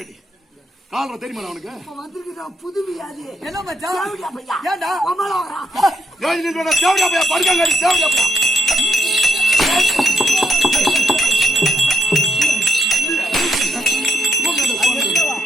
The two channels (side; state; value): both; normal; correlation 0.76